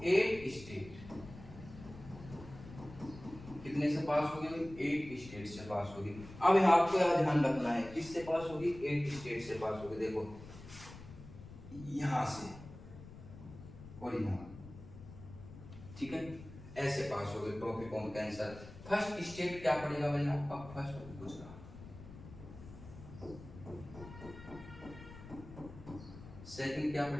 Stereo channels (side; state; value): left; noise; rumble, 15 dB below the sound